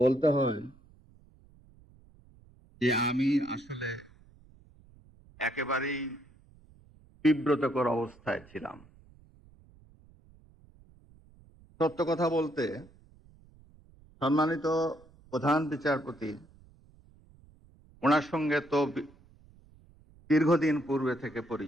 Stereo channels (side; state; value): right; noise; rumble, 27 dB below the sound